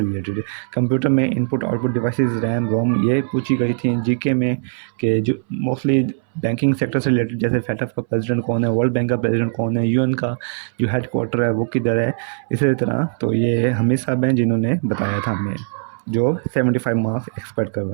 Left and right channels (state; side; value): silent; left; 62 dB below the other